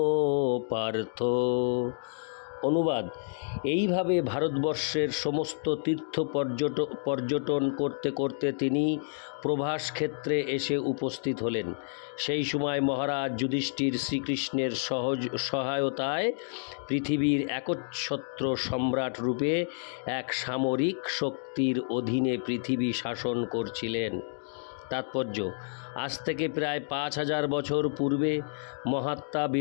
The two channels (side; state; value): right; silent; digital silence